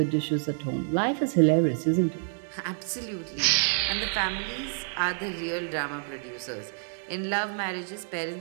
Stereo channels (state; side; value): silent; left; digital silence